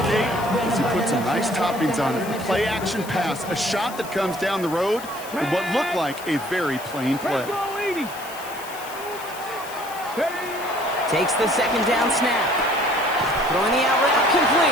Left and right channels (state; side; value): noise; left; hiss, 15 dB below the sound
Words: gate is he put some nice toppings on it. A play action pass, a shot that comes down the road, and what looked like a very plain play. Takes the second down snap. Throwing the out route